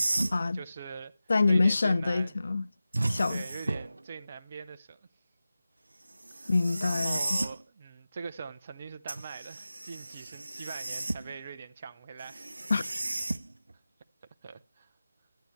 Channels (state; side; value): inverted; both; correlation -0.95